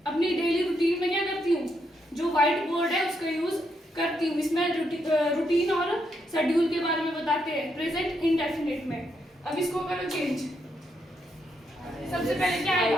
अपनी डेली रूटीन में क्या करती हूँ? जो व्हाइट बोर्ड है उसका यूज करती हूँ। इसमें रूटीन और शेड्यूल के बारे में बताते हैं प्रेजेंट इंडेफिनिट में। अब इसको करो चेंज। सबसे पहले क्या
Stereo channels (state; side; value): normal; both; correlation 0.79